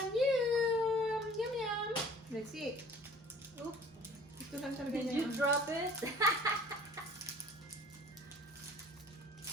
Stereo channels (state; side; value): normal; both; correlation 0.49